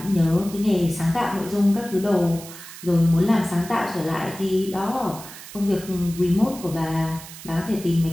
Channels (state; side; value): noise; right; hiss, 15 dB below the sound